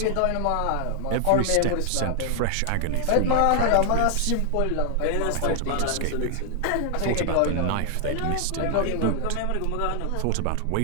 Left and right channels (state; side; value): different; both; correlation 0.00